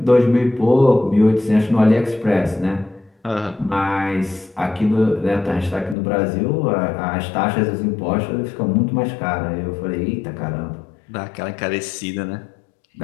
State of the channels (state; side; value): drops out; right; at 6.0 s